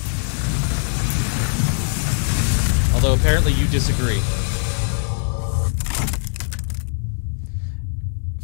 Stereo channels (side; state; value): right; silent; 65 dB below the other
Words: Although apparently you disagree.